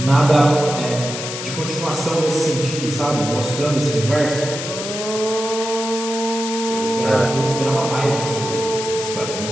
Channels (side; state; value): left; noise; hiss, 7 dB below the sound